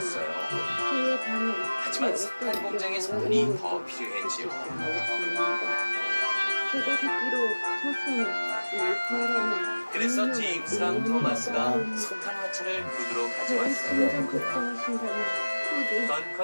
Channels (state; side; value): inverted; both; correlation -1.00